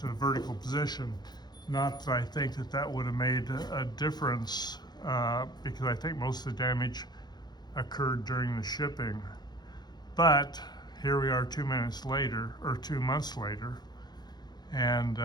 the vertical position. Not that I think that would have made a difference, because I think most of the damage occurred during the shipping. But here we are 2 months later, and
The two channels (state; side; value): late; right; 0.20 ms